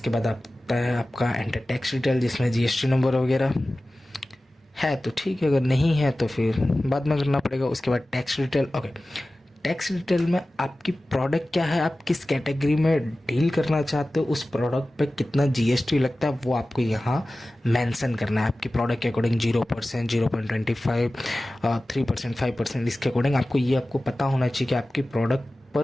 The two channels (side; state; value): both; normal; correlation 0.96